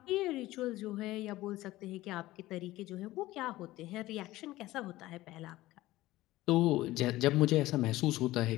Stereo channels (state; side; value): quieter; right; 17.1 dB